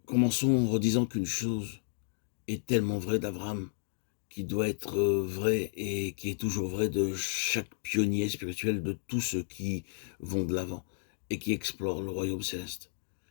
Commençons en redisant qu'une chose est tellement vraie d'Abraham, qui doit être vraie et qui est toujours vraie de chaque pionnier spirituel, de tous ceux qui vont de l'avant et qui explorent le royaume céleste.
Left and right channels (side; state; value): right; silent; 56 dB below the other